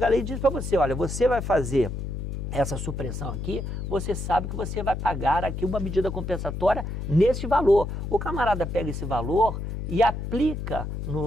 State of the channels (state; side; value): noise; left; hum, 5 dB below the sound